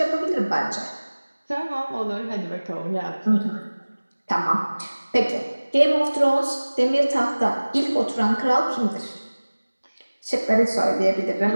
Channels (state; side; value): inverted; both; correlation -1.00